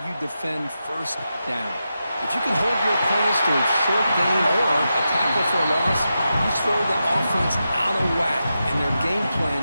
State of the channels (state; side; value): inverted; both; correlation -0.89